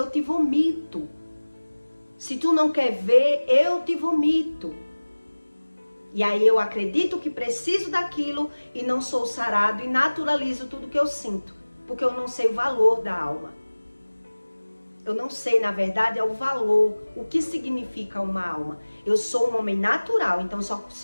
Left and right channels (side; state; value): both; inverted; correlation -1.00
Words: te vomito. Se tu não quer ver, eu te vomito. E aí eu acredito que preciso daquilo e não sou sarado e naturalizo tudo que eu sinto. Porque eu não sei o valor da alma. Eu não sei, na verdade, é o valor, o que significa uma alma. Eu sou um homem natural, então